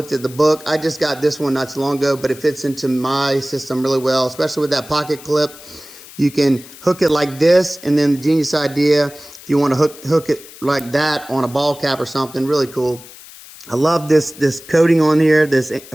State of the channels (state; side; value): noise; left; hiss, 19 dB below the sound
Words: at the book. I just got this one not too long ago, but it fits into my system really well, especially with that pocket clip. You can hook it like this, and then the genius idea, if you want to hook it like that on a ball cap or something, really cool. I love this coating on here, this